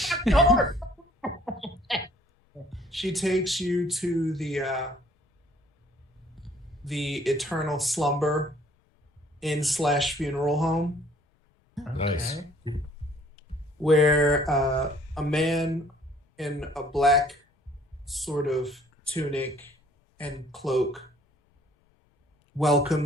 She takes you to the Eternal Slumber Inn/funeral home. Nice. Where a man in a black sort of tunic and cloak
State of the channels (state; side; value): normal; both; correlation 0.58